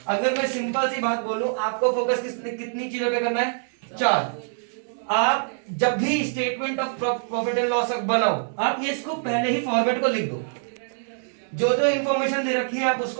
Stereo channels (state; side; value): silent; left; digital silence